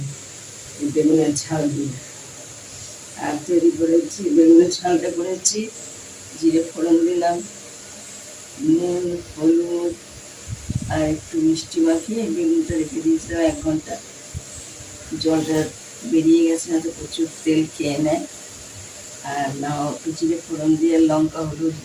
বেগুনের ঝাল দিয়ে। আর তৈরি করেছি বেগুনের ঝালটা করেছি, জিরে ফোড়ন দিলাম, নুন, হলুদ আর একটু মিষ্টি মাখিয়ে বেগুনটা রেখে দিয়েছিলাম 1 ঘন্টা। জলটা বেরিয়ে গেছে, না তো প্রচুর তেল খেয়ে নেয়। আর না, জিরে ফোড়ন দিয়ে লঙ্কা হলুদ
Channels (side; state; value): both; identical; correlation 1.00